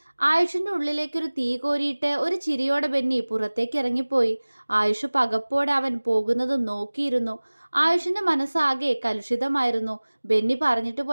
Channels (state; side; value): inverted; both; correlation -1.00